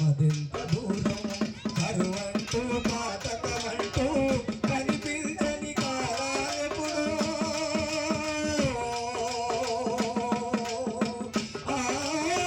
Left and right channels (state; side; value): identical; both; correlation 1.00